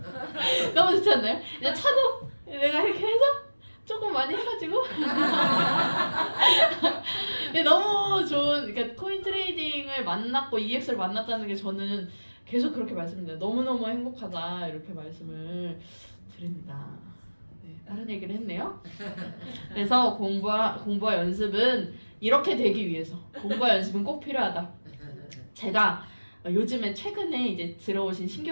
너무 좋지 않나요? 이제 차도 내가 이렇게 해서 조금 많이 해가지고 너무 좋은 그러니까 코인 트레이딩을 만났고 EX를 만났다는 게 저는 계속 그렇게 말씀드려요. 너무너무 행복하다 이렇게 말씀을 드립니다. 네, 다른 얘기를 했네요. 그래서 공부와 연습은 이렇게 되기 위해서 공부와 연습은 꼭 필요하다. 제가 요즘에 최근에 이제 들어오신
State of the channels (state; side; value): inverted; both; correlation -1.00